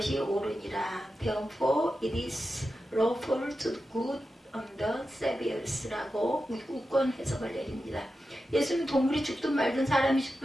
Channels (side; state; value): both; normal; correlation 0.91